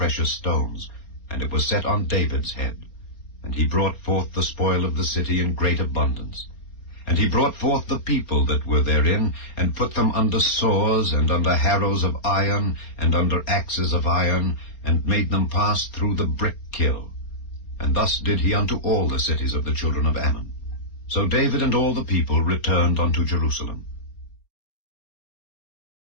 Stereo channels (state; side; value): late; right; 4.3 ms